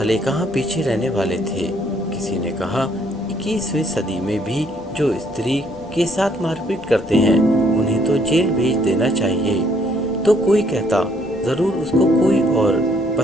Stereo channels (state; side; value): normal; both; correlation 0.67